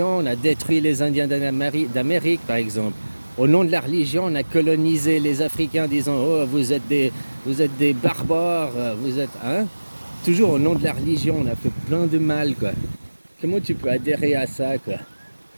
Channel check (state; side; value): inverted; both; correlation -1.00